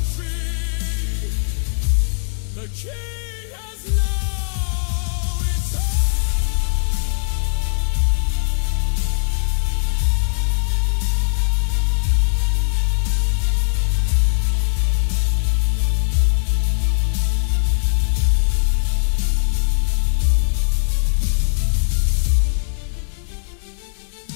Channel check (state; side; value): silent; right; 58 dB below the other